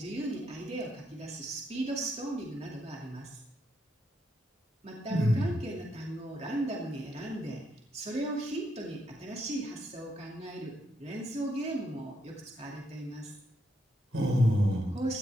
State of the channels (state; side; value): normal; both; correlation 0.78